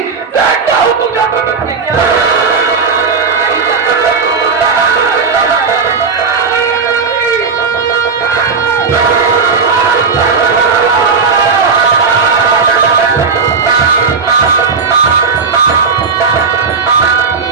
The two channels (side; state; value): left; quieter; 5.2 dB